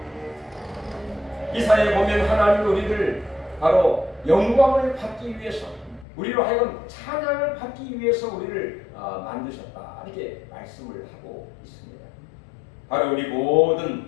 이사야에 보면 하나님 우리를 바로 영광을 받기 위해서 우리로 하여금 찬양을 받기 위해서 우리를 만드셨다. 이렇게 말씀을 하고 있습니다. 바로 우리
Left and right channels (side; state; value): right; drops out; at 6.1 s